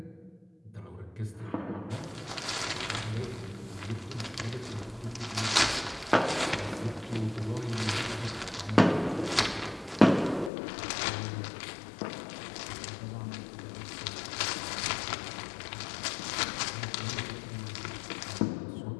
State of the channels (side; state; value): right; drops out; at 10.5 s